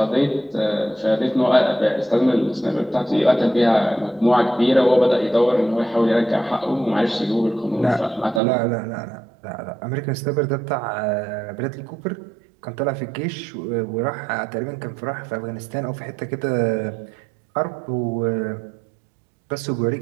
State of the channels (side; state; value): left; drops out; at 8.4 s